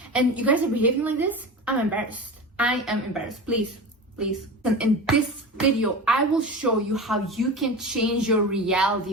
and you guys are behaving like this. I'm embarrassed. I am embarrassed. Please. And in this video, I will show you how you can change your reality,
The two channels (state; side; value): normal; both; correlation 0.29